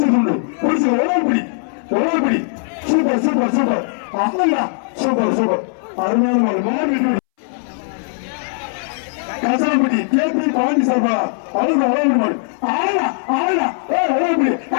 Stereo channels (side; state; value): right; silent; 65 dB below the other